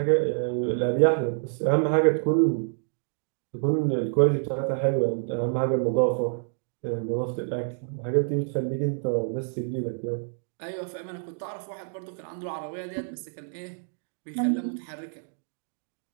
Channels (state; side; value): silent; left; digital silence